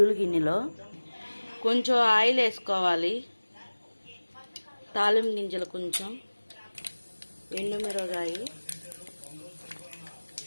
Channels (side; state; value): both; inverted; correlation -1.00